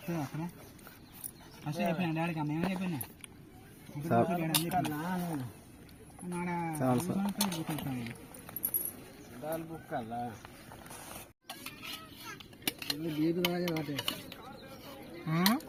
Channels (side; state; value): both; identical; correlation 1.00